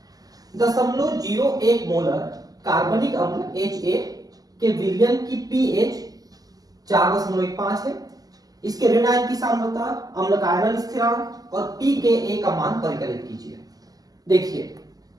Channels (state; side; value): late; left; 0.18 ms